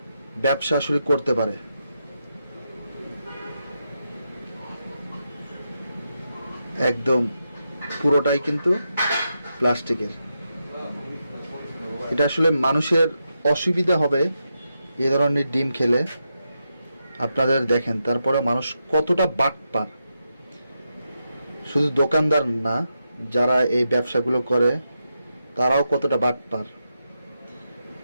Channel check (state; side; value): inverted; both; correlation -0.85